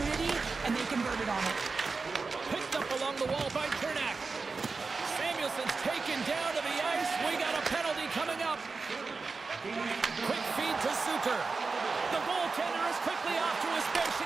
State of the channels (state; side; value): quieter; left; 4.3 dB